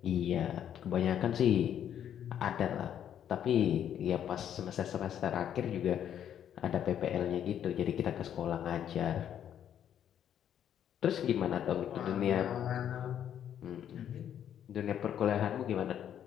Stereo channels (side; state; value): right; quieter; 9.8 dB